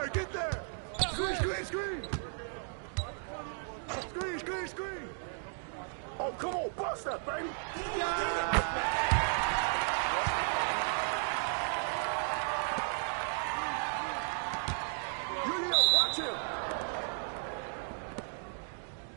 get there! Screen, screen, screen! Screen, screen, screen! Oh, come on, bust that, baby! Yo, watch him!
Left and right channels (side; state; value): left; silent; 55 dB below the other